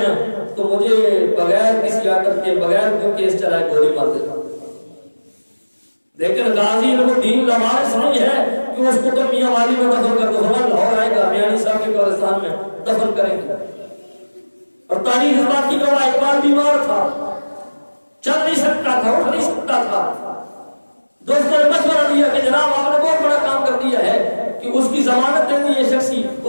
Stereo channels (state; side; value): inverted; both; correlation -1.00